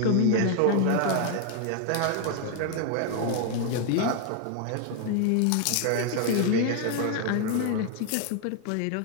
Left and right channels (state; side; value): different; both; correlation 0.00